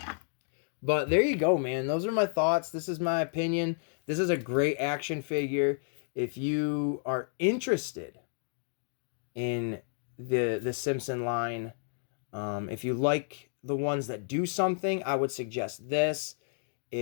But there you go, man. Those are my thoughts. This is my opinion. This is a great action figure. If you are interested in the Simpson line. If you like the ones that do something, I would suggest this.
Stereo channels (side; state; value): right; silent; digital silence